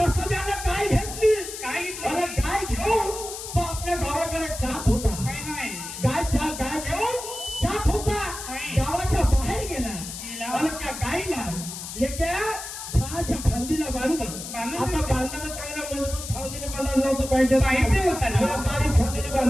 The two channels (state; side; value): noise; left; hiss, 9 dB below the sound